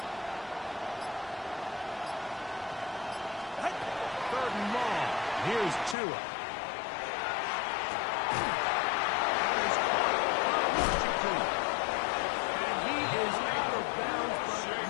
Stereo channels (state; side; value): drops out; right; at 6.0 s